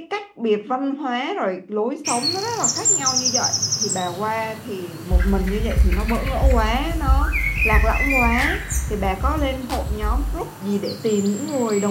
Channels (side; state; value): both; identical; correlation 1.00